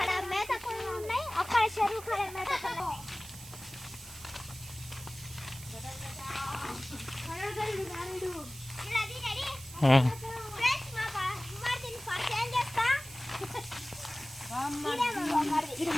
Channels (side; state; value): right; noise; hiss, 15 dB below the sound